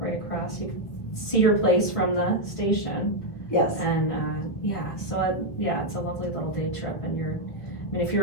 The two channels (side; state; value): right; late; 1.5 ms